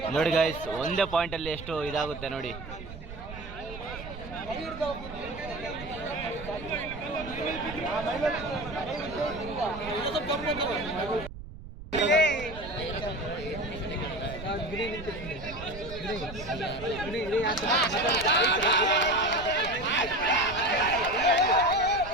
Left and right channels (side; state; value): right; noise; rumble, 13 dB below the sound